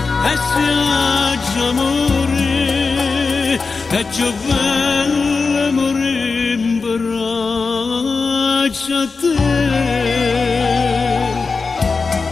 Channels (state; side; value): quieter; right; 4.4 dB